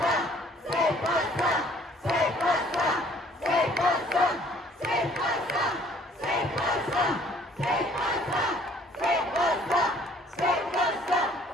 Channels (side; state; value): both; normal; correlation 0.58